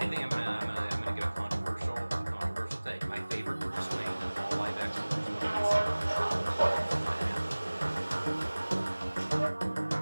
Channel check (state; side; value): inverted; both; correlation -1.00